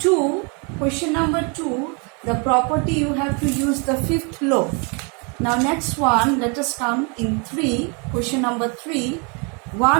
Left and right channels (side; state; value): left; quieter; 34.6 dB